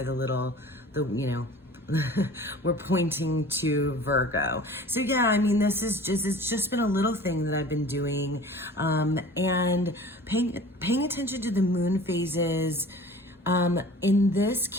you know, we're pointing to Virgo. So yeah, I mean, it's just been a little thing that I've been doing, and paying attention to the moon phases. In this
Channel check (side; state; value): both; normal; correlation 0.43